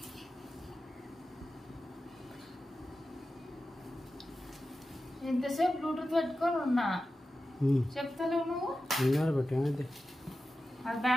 ఎంతసేపు బ్లూటూత్ పెట్టుకొని ఉన్నా, చెప్తలేవు నువ్వు. అది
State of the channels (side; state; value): both; normal; correlation 0.93